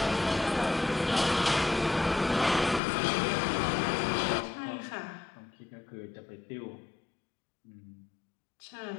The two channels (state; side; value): drops out; right; at 2.8 s